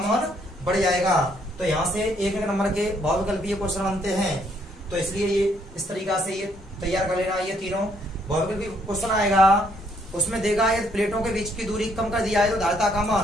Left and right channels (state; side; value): normal; both; correlation 0.69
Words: बढ़ जाएगा। तो यहाँ से एक नंबर के बहुविकल्पीय क्वेश्चन बनते हैं, तो इसलिए ये इस तरीका से ये तैयार कर लेना। ये तीनों बहुविकल्पीय क्वेश्चन आएगा, उसमें देगा यदि प्लेटों के बीच की दूरी कम कर दिया है तो धारिता का